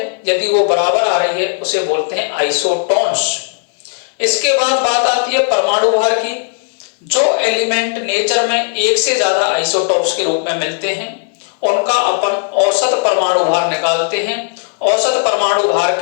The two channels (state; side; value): silent; right; digital silence